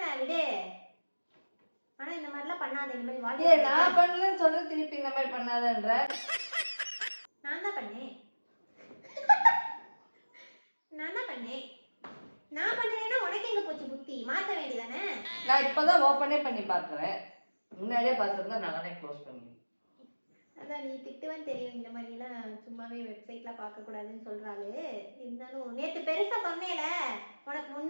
விடு. ஆனா இந்த மாதிரிலாம் பண்ணாத. இந்த மாதிரி வாழ்க்கை நான் பண்ணலன்னு சொல்ற திருப்பி இந்த மாதிரி பண்ணாதன்ற. நான் தான் பண்ணேன். நான் பண்ணேன்னா உனக்கு எங்க போச்சு புத்தி? மாத்த வேண்டியதானே? நான் இப்பதான் ஓபனே பண்ணி பாக்குறேன். முன்னாடியே பார்த்திருந்தா நானே க்ளோஸ் பண்ணிடுவேன். அதான் நீ திட்டுவன்னு தெரியும். இந்த மாதிரி எல்லாம் சும்மாவே வெப்சைட்லாம் பார்க்க கூடாதுன்னு சொல்றாரு. இருந்தாலும் நேத்து பெருசா சொன்னேல, உனக்கு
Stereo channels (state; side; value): inverted; both; correlation -1.00